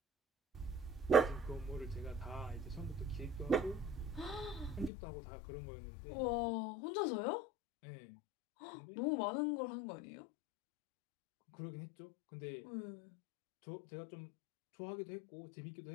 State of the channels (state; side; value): drops out; right; at 4.9 s